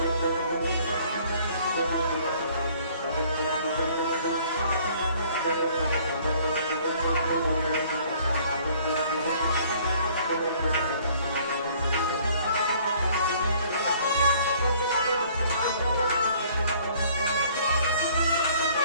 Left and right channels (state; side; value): inverted; both; correlation -0.57